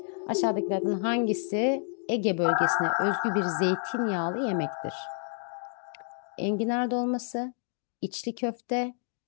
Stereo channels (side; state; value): right; silent; 58 dB below the other